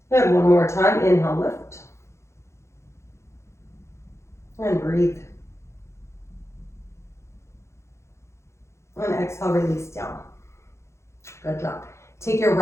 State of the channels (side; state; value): right; late; 0.13 ms